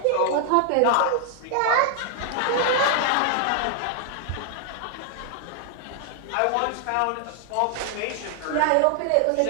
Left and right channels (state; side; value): different; both; correlation 0.00